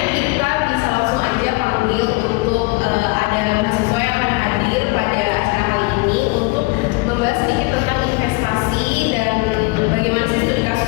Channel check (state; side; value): quieter; right; 25.7 dB